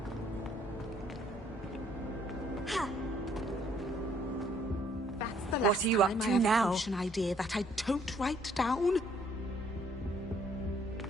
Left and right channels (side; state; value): both; normal; correlation 0.64